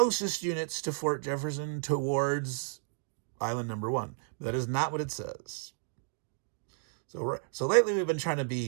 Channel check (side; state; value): left; silent; digital silence